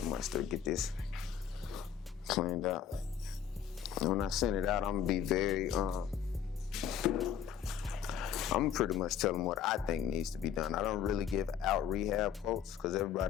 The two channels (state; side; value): quieter; right; 8.5 dB